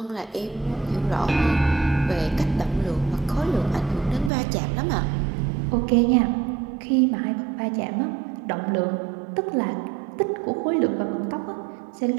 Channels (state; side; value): drops out; left; at 4.3 s